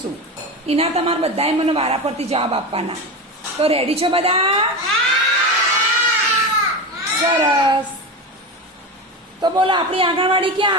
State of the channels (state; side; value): normal; both; correlation 0.21